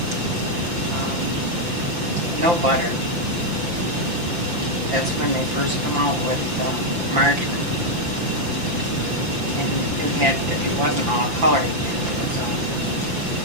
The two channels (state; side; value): late; left; 5.8 ms